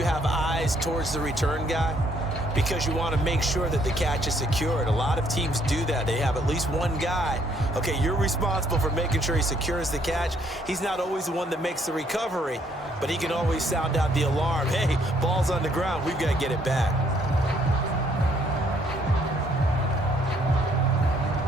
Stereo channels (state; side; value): normal; both; correlation 0.67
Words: have eyes towards the return guy, because you want to make sure that the catch is secured. A lot of teams do that. They have at least one guy. Okay, you're responsible for making sure he secures the catch. He's not always the one that makes the recovery, but he can always sound out the alarm. Hey, ball's on the ground. We've got to get it back.